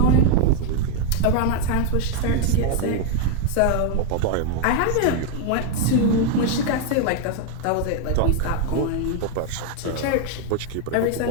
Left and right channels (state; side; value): different; both; correlation 0.00